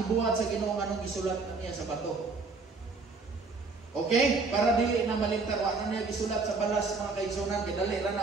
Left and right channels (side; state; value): left; quieter; 4.1 dB